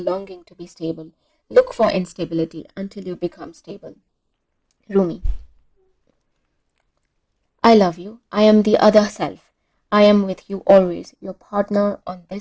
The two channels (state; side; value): identical; both; correlation 1.00